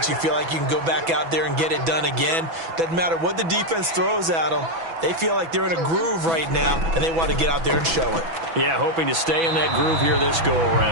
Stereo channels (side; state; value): left; late; 6.1 ms